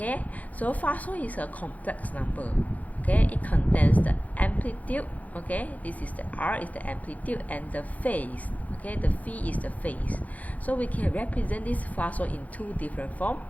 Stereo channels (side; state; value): right; late; 0.075 ms